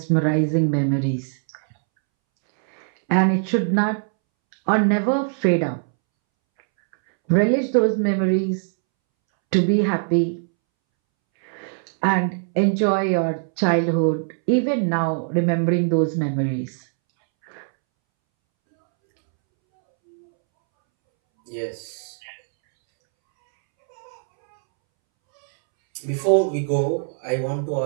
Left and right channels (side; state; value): left; silent; 64 dB below the other